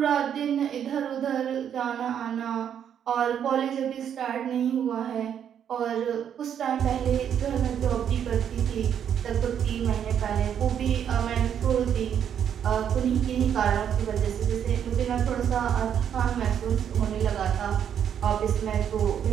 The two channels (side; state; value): left; quieter; 8.9 dB